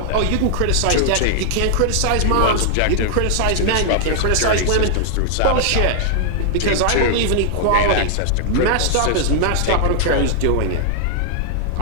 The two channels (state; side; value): different; both; correlation -0.01